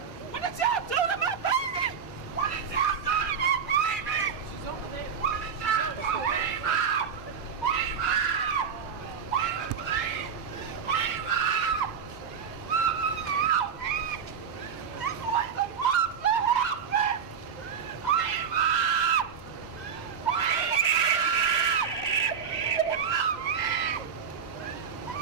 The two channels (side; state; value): left; quieter; 7.0 dB